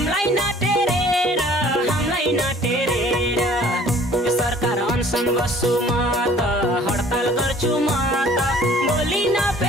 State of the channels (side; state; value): both; normal; correlation 0.53